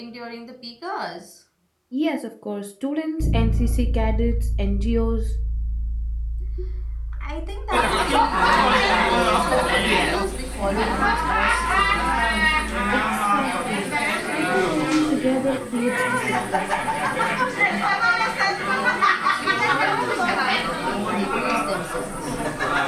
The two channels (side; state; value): both; identical; correlation 1.00